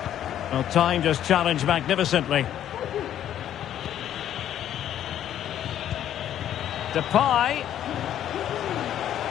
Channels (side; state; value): right; quieter; 10.9 dB